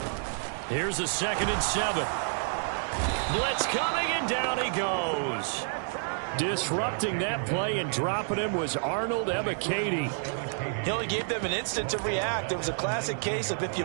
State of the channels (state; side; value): silent; left; digital silence